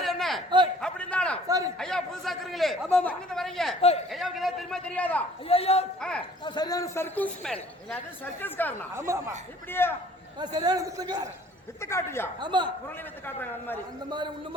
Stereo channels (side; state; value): both; normal; correlation 0.53